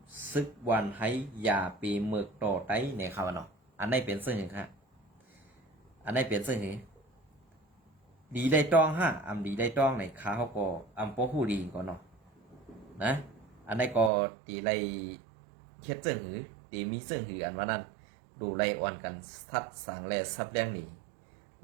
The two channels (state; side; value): drops out; left; at 14.1 s